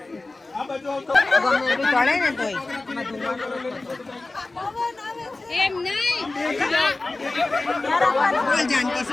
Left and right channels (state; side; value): quieter; right; 3.2 dB